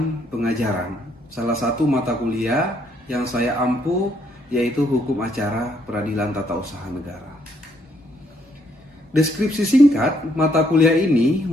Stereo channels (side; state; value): both; normal; correlation 0.71